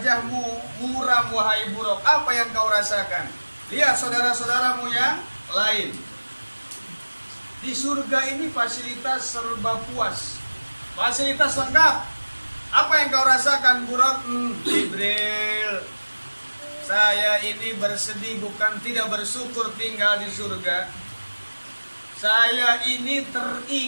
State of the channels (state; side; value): inverted; both; correlation -1.00